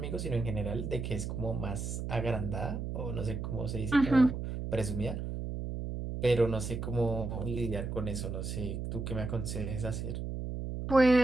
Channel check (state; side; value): noise; right; hum, 4 dB below the sound